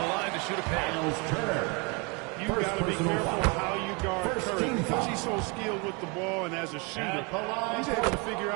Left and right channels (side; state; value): left; quieter; 30.8 dB